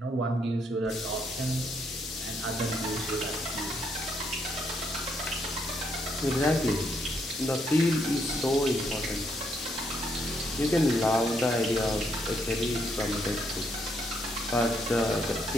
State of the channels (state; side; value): normal; both; correlation 0.75